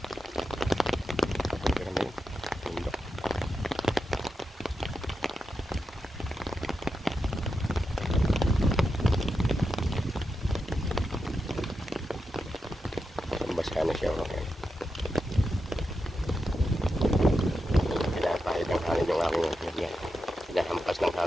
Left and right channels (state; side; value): normal; both; correlation 0.88